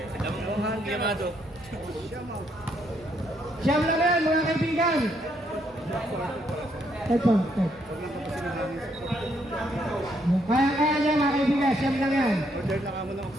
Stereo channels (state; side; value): normal; both; correlation 0.73